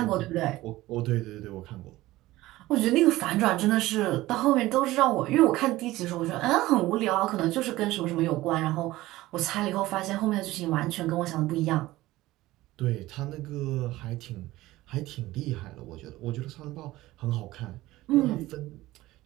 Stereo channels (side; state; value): left; quieter; 17.4 dB